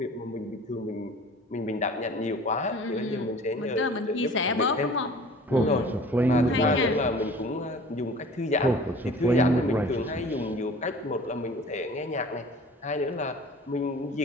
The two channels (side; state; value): both; normal; correlation 0.45